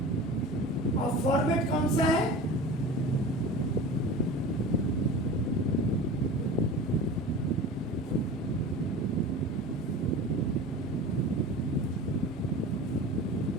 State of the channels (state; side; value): normal; both; correlation 0.34